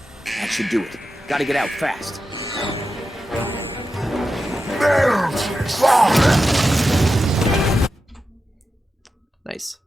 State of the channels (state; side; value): normal; both; correlation 0.90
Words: That should do it. Gotta get out fast. Nice.